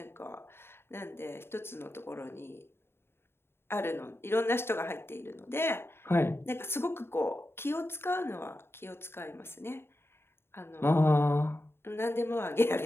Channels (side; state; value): right; late; 0.11 ms